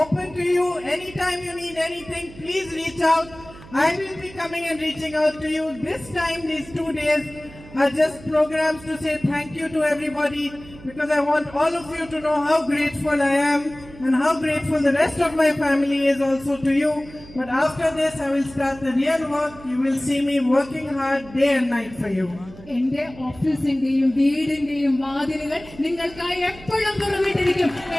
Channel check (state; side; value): noise; right; hum, 19 dB below the sound